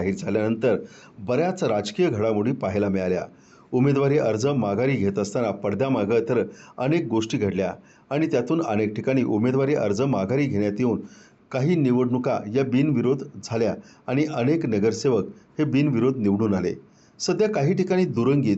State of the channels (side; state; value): both; identical; correlation 1.00